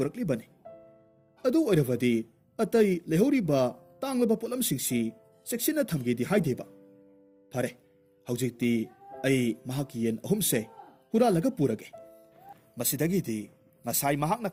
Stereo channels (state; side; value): identical; both; correlation 1.00